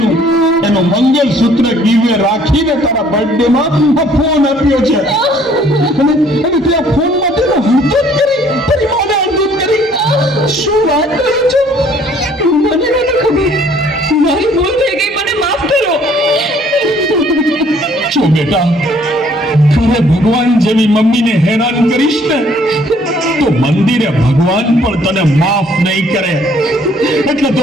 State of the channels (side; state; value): both; normal; correlation 0.60